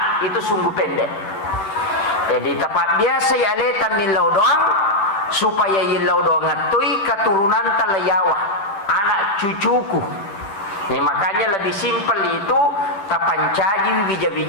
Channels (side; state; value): right; late; 10 ms